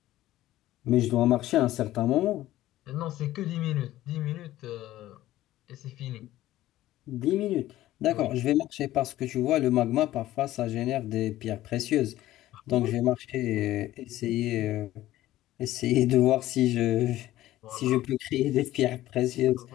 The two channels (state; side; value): quieter; right; 14.9 dB